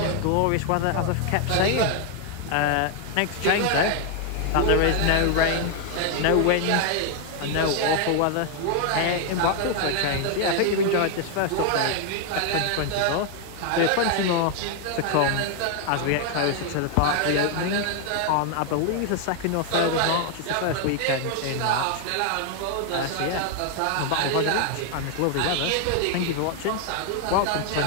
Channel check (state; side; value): different; both; correlation 0.00